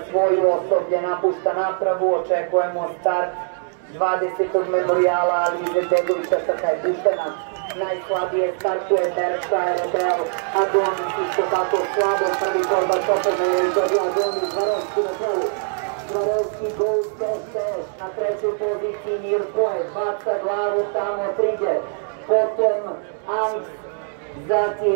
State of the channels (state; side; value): silent; left; 64 dB below the other